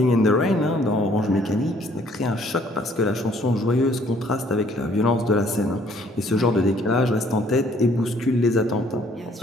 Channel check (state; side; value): normal; both; correlation 0.61